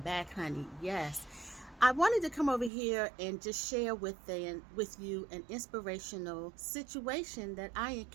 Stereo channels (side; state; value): left; drops out; at 2.7 s